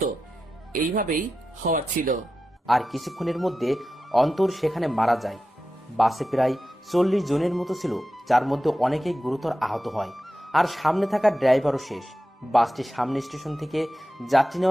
এইভাবেই হওয়ার ছিল। আর কিছুক্ষণের মধ্যে অন্তর সেখানে মারা যায়। বাসে প্রায় 40 জনের মতো ছিল, যার মধ্যে অনেকেই গুরুতর আহত হয়। আর সামনে থাকা ড্রাইভারও শেষ। বাসটি সামনে স্টেশন থেকে যাত্রী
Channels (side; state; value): both; normal; correlation 0.92